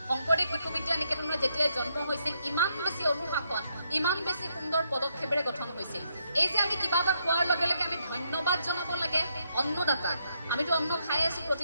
শংকৰদেৱ শিশু বিদ্যা নিকেতনৰ যেতিয়াই জন্ম হৈছিল, ইমান বেছি অনুশাসন, ইমান বেছি সুন্দৰ পদক্ষেপেৰে গঠন হৈছিল। এই যে আমি কিবা এটা খোৱাৰ লগে লগে আমি ধন্যবাদ জনাব লাগে অন্নদাতাক। আমিতো অন্ন খাই আছোঁ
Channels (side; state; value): both; inverted; correlation -0.77